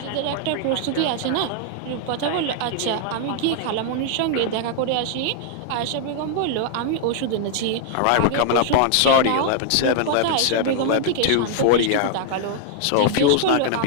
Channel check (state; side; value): different; both; correlation 0.00